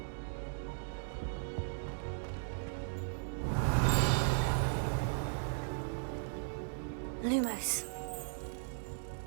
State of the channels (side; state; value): left; silent; digital silence